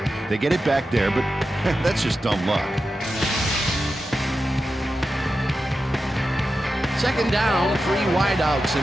They get it back there, but that's just dumb luck. 2nd down, 3 wideouts in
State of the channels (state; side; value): normal; both; correlation 0.91